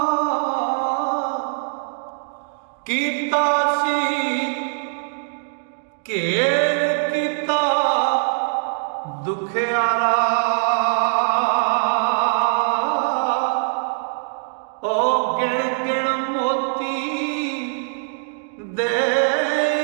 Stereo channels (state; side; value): silent; left; digital silence